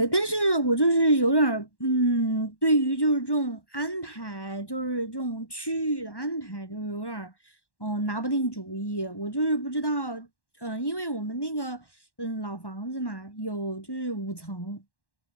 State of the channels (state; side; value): late; right; 1.1 ms